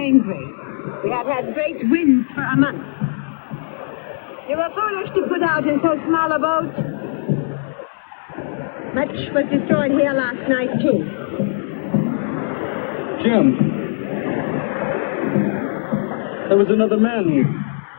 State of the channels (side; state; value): right; silent; digital silence